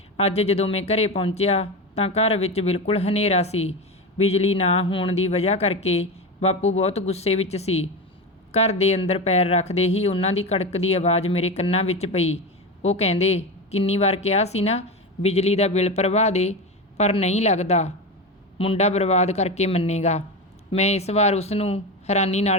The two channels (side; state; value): both; normal; correlation 0.20